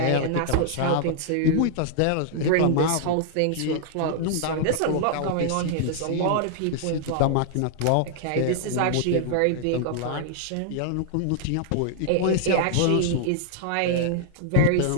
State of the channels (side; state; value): both; different; correlation 0.00